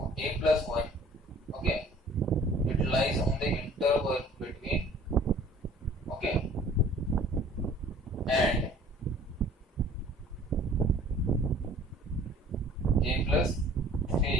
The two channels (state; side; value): normal; both; correlation 0.52